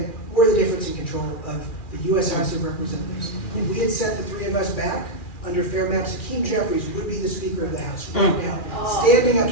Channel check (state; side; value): late; right; 2.4 ms